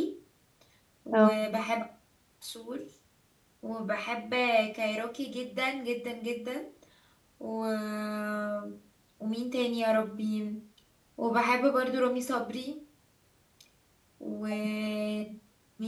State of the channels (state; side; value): identical; both; correlation 1.00